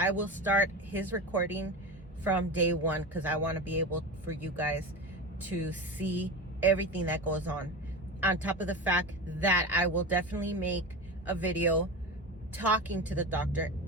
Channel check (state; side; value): normal; both; correlation 0.25